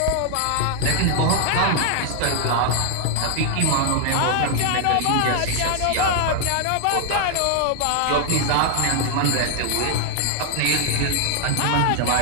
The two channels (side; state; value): both; different; correlation 0.00